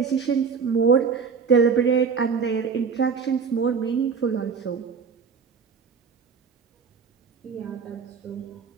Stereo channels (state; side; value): quieter; left; 5.9 dB